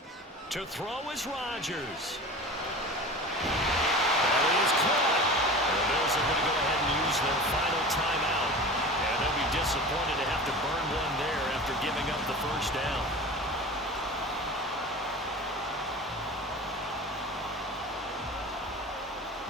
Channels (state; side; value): normal; both; correlation 0.35